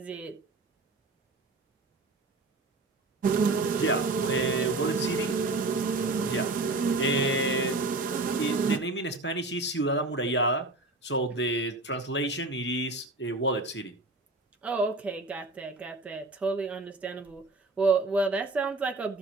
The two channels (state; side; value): quieter; left; 3.1 dB